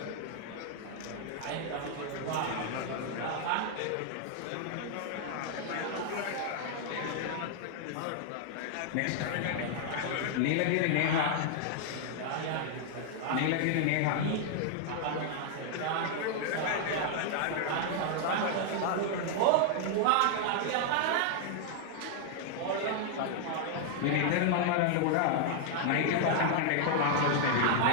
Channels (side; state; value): both; different; correlation 0.00